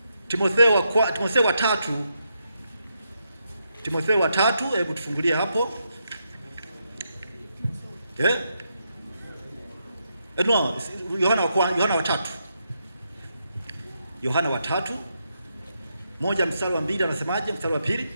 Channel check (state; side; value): inverted; both; correlation -0.81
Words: wa tatu, hebu tufungulie hapo. No, Yohana wa tatu moja mstari wa 2 anasemaje? Mstari wa 2,